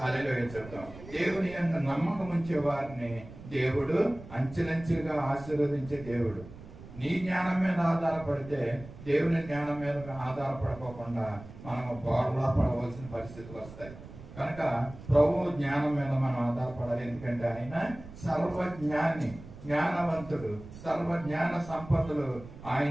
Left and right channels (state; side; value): noise; right; rumble, 16 dB below the sound